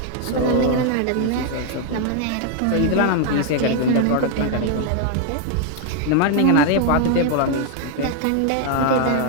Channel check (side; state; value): both; different; correlation 0.00